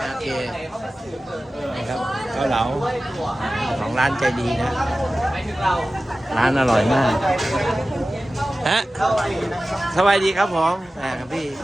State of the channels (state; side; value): normal; both; correlation 0.96